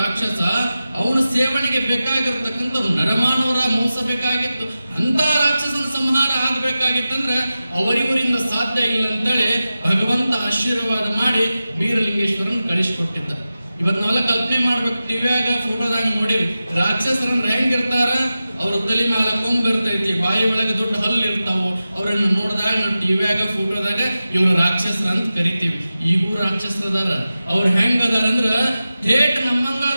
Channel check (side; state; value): both; inverted; correlation -0.94